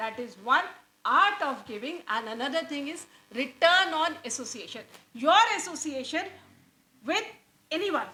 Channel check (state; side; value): identical; both; correlation 1.00